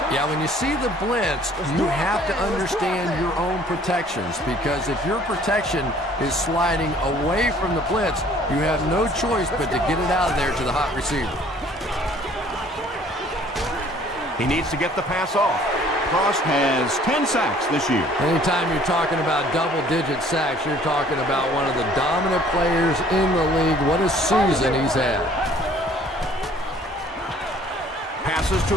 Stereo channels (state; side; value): normal; both; correlation 0.56